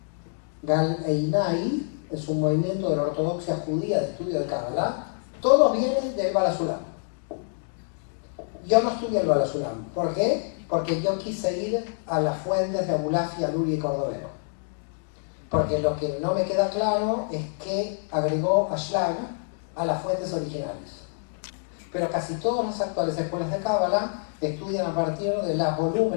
Gal Einai es un movimiento de la ortodoxia judía de estudio de cábala. Todos vienen del Baal HaSulam. Yo no estudié el Baal HaSulam. ¿Por qué? Porque yo quise ir a las fuentes de Abulafia, Luri y Cordovero. Porque lo que no me queda claro es que agregó Ashlag a las fuentes originales. Pero casi todas las actuales escuelas de cábala estudian a partir de los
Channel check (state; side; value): silent; right; digital silence